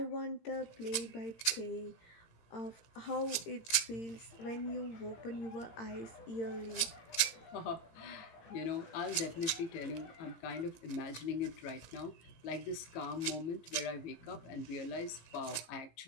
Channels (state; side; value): late; right; 17 ms